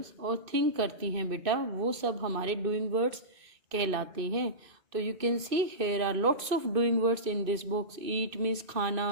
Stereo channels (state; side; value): late; left; 2.5 ms